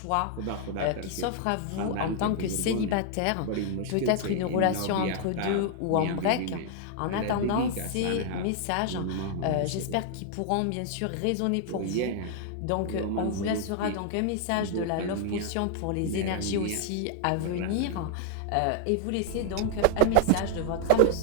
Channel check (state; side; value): different; both; correlation 0.00